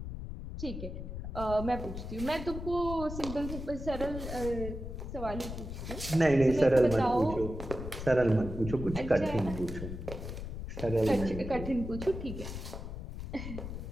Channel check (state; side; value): noise; left; rumble, 7 dB below the sound